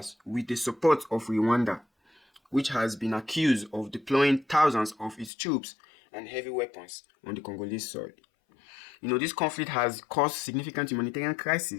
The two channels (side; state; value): right; drops out; at 5.3 s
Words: with the support of Rwanda, which has been accused of deploying thousands of its troops and heavy weapons on the Congolese soil. This conflict has caused significant humanitarian